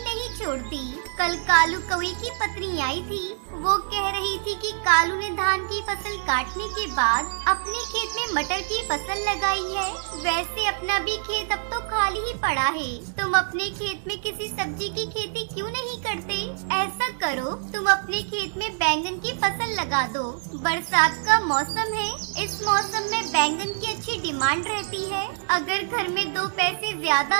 नहीं छोड़ती। कल कालू कौवे की पत्नी आई थी। वो कह रही थी कि कालू ने धान की फसल काटने के बाद अपने खेत में मटर की फसल लगाई है। वैसे अपना भी खेत अब तो खाली ही पड़ा है। तुम अपने खेत में किसी सब्जी की खेती क्यों नहीं करते? ऐसा करो, तुम अपने खेत में बैंगन की फसल लगा दो। बरसात का मौसम है, इस मौसम में बैंगन की अच्छी डिमांड रहती है। अगर घर में 2 पैसे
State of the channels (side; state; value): left; silent; digital silence